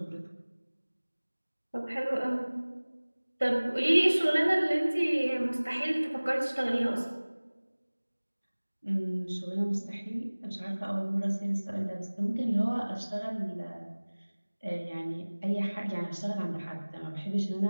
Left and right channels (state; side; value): inverted; both; correlation -1.00